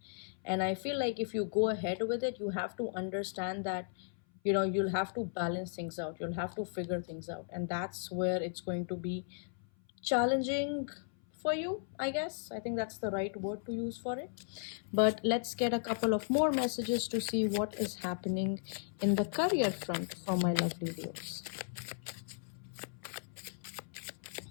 And I feel like if you go ahead with it, you have to understand that you'll have to balance things out, you'll have to figure things out, and that's where it's going to be challenging for you, I guess. I think that's the right word to use for it. But let's get a couple of more messages to see what is happening in the career front for my lovely Leos.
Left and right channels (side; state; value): right; silent; 54 dB below the other